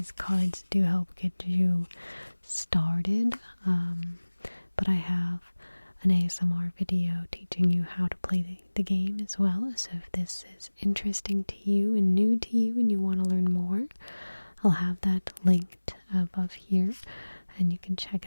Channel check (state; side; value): inverted; both; correlation -1.00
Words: cards do help get you started. But I have an ASMR video teaching you how to play the game as well. So if this is interesting to you and new to you and you want to learn more, I'll have that linked above here and you can check